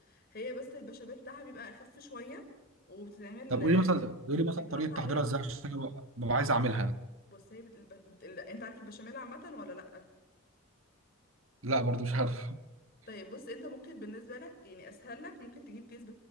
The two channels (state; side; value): normal; both; correlation 0.15